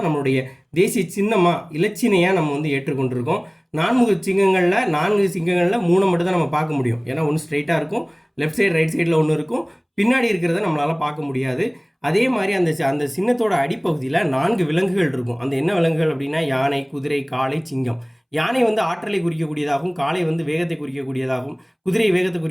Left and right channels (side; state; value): both; identical; correlation 1.00